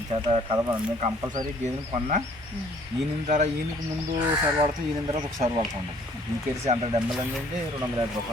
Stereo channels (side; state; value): both; normal; correlation 0.58